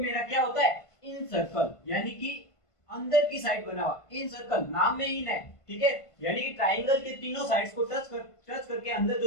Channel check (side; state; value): right; late; 1.5 ms